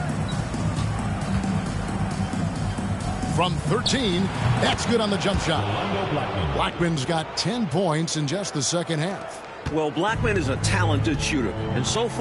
From 13, that's good on the jump shot. Blackman's got 10 points in just the second half. Well, Blackman is a talented shooter, and so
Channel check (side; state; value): both; identical; correlation 1.00